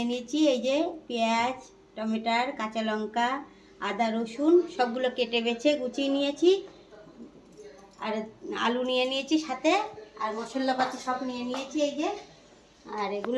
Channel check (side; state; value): both; identical; correlation 1.00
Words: নিয়েছি এই যে পেঁয়াজ, টমেটোর, কাঁচা লঙ্কা, আদা, রসুন সবগুলো কেটে বেছে গুছিয়ে নিয়েছি। আর আলু নিয়ে নিয়েছি সাথে, আর মশলাপাতি সব নিয়ে নিয়েছি এই যে। আর